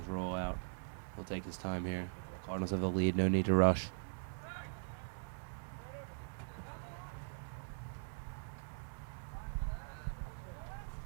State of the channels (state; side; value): silent; left; digital silence